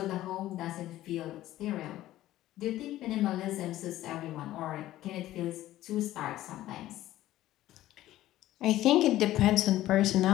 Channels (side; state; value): right; quieter; 14.7 dB